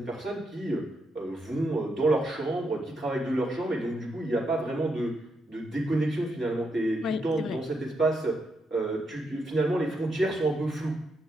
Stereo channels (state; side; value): normal; both; correlation 0.81